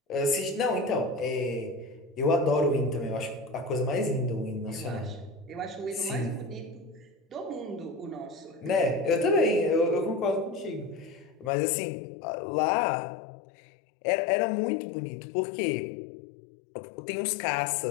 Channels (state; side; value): drops out; right; at 11.5 s